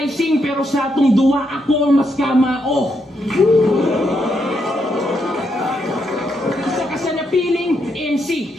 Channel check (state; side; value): normal; both; correlation 0.79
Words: pero sa atong duwa ako mas kamao. Sa kasanapiling